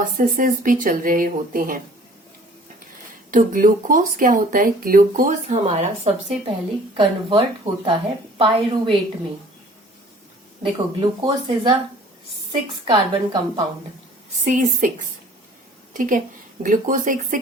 भी चल रहे होते हैं। तो ग्लूकोज क्या होता है, ग्लूकोज हमारा सबसे पहले कन्वर्ट होता है पायरुवेट में। देखो glucose is a 6 carbon compound, C6, ठीक है। ग्लूकोज एक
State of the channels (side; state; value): both; normal; correlation 0.51